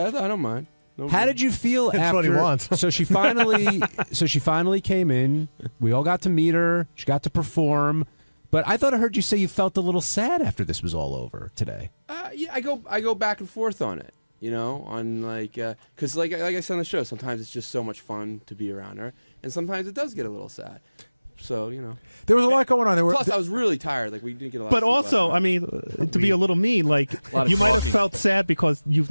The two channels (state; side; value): inverted; both; correlation -1.00